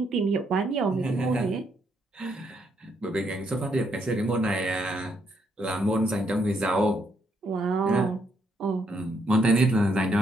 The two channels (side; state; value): both; normal; correlation 0.75